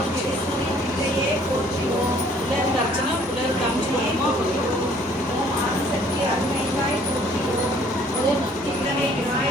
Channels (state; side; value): normal; both; correlation 0.58